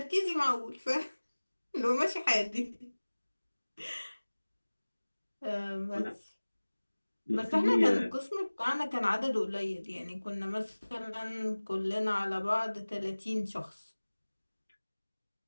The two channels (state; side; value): inverted; both; correlation -1.00